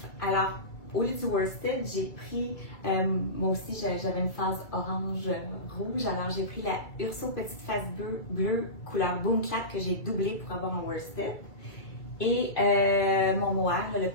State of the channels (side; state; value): right; late; 2.3 ms